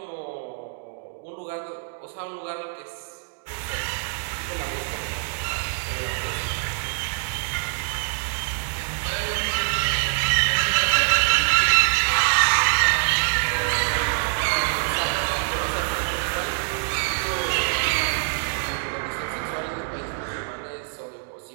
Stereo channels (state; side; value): silent; left; digital silence